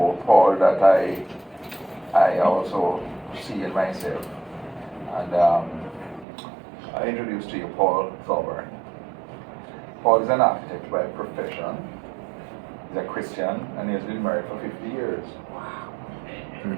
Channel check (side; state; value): left; drops out; at 6.2 s